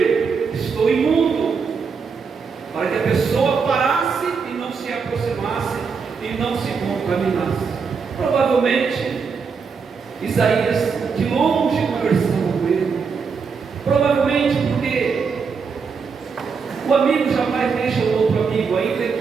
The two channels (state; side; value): quieter; left; 5.5 dB